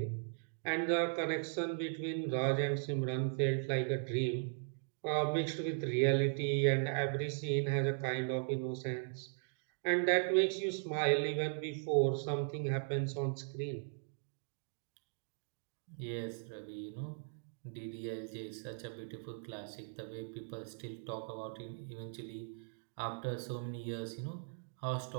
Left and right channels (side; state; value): left; silent; digital silence